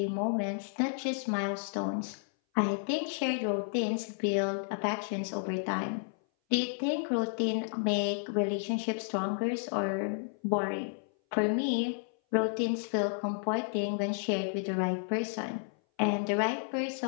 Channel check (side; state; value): right; silent; 57 dB below the other